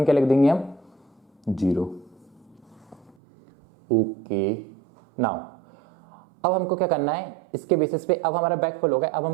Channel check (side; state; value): left; drops out; at 3.2 s